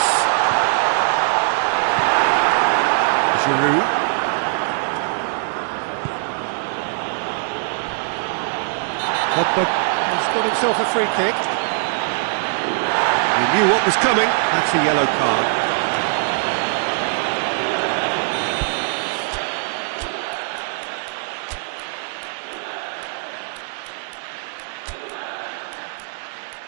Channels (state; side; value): silent; left; digital silence